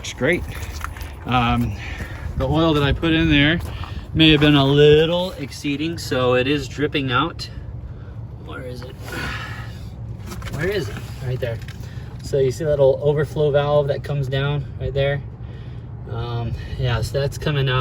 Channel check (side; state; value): both; identical; correlation 1.00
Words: great. The oil that I put in there may have been a little exceeding, so it is dripping out. Where is it? Where is it? Right there. So you see that little overflow valve that comes down right there? Yeah, so that's coming